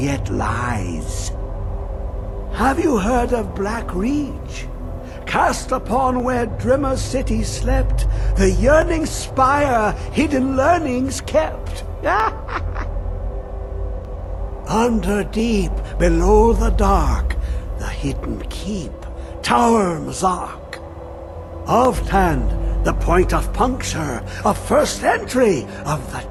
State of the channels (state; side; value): identical; both; correlation 1.00